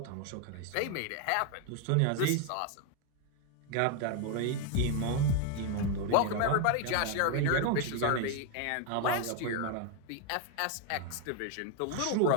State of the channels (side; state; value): both; different; correlation 0.01